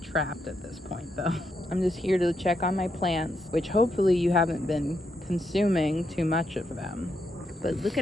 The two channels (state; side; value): normal; both; correlation 0.80